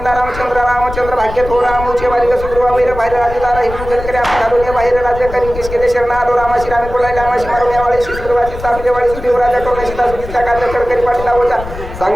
रामचंद्र भाग्य थो रामूचे बालिका सुग्रीवा वैर बाहेर राजदारा हिंदू जनकरे आपण घालून बाहेर राज्य करी किस केले शरण आलो रामाशी रामी कोलायला रामाशी मारुण्यावाळी सुग्रीवाची सापलेवाळी सुदेवराजा करून सीता सुधीचा कार्य करकरी पाठीला होता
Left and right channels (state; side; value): noise; left; rumble, 11 dB below the sound